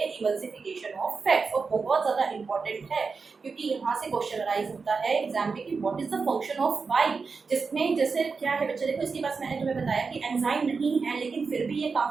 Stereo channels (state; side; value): quieter; left; 4.8 dB